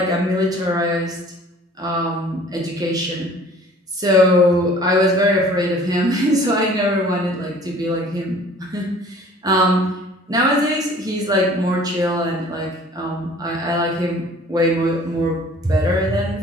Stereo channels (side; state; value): both; normal; correlation 0.50